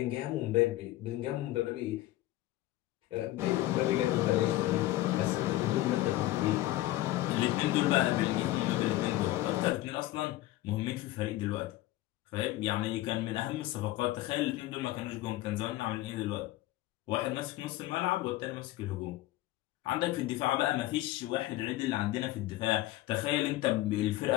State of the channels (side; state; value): right; quieter; 16.4 dB